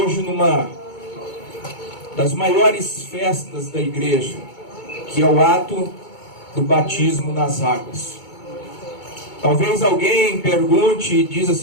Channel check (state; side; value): late; right; 2.2 ms